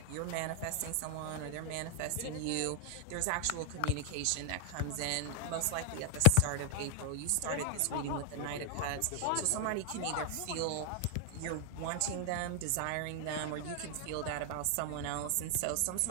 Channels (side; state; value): both; different; correlation 0.00